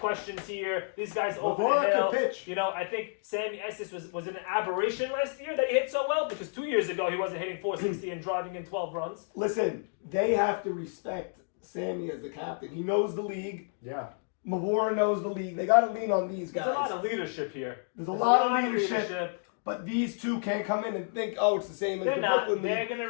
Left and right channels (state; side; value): silent; right; digital silence